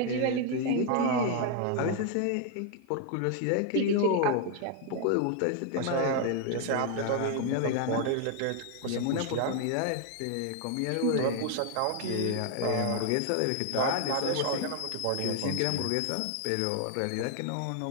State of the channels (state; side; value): different; both; correlation 0.01